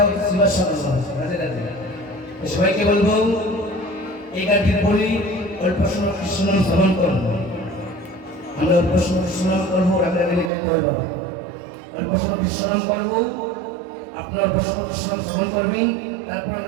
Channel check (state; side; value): drops out; left; at 10.5 s